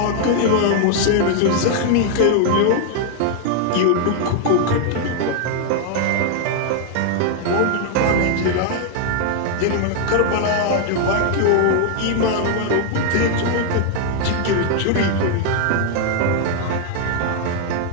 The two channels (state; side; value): different; both; correlation 0.00